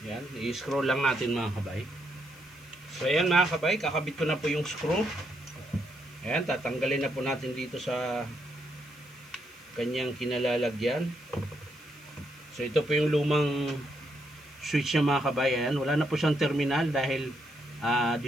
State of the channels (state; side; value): noise; left; hiss, 25 dB below the sound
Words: Yan, i-screw lang natin mga kabay. So ayan mga kabay, kakabit ko na po yung screw. Ayan, tatanggalin na po natin dito sa kanyang kinalalagyan. So ito po yung lumang switch niya mga kabay. Ayan, wala na po siyang terminal dahil